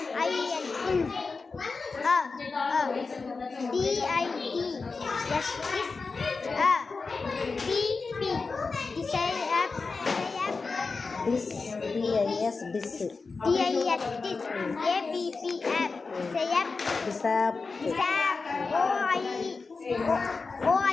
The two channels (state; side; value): quieter; right; 4.3 dB